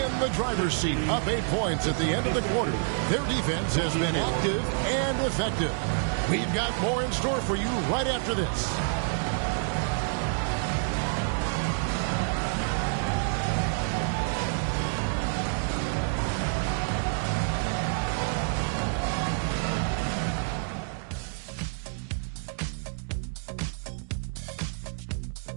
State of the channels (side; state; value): left; silent; digital silence